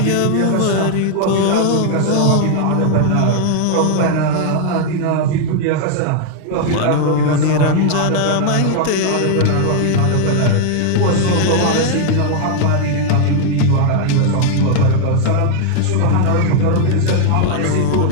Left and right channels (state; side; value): different; both; correlation 0.00